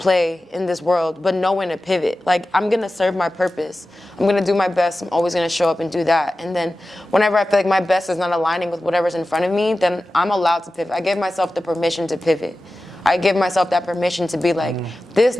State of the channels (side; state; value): both; normal; correlation 0.95